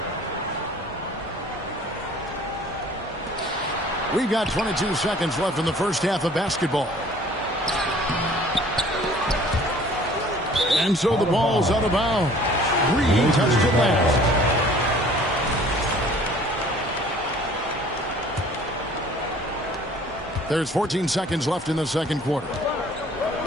We've got 22 seconds left in the first half of basketball. And so the ball's out of bounds. Reed touched it last. There's 14 seconds left in the second quarter.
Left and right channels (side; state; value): both; normal; correlation 0.52